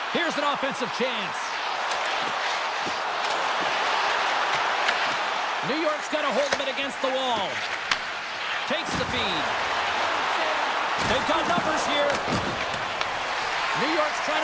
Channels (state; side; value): identical; both; correlation 1.00